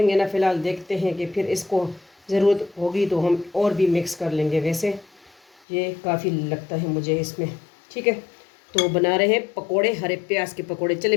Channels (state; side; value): drops out; right; at 5.6 s